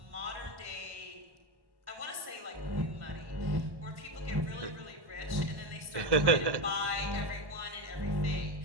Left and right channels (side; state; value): left; late; 1.1 ms